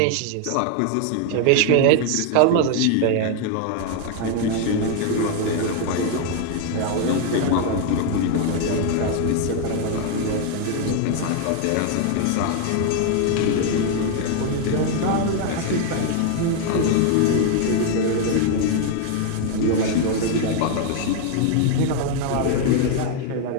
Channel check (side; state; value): both; different; correlation 0.00